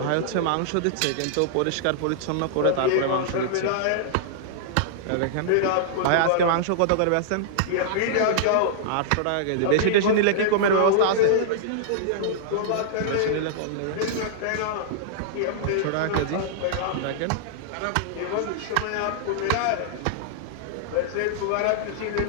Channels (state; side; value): different; both; correlation -0.01